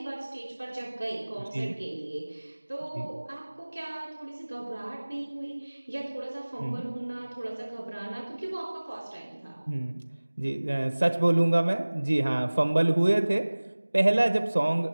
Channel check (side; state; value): both; inverted; correlation -1.00